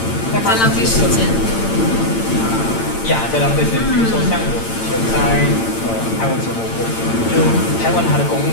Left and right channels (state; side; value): late; right; 8.9 ms